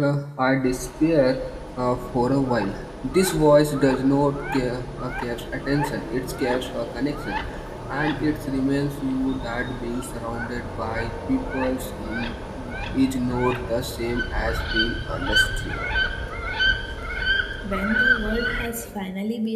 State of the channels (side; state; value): both; identical; correlation 1.00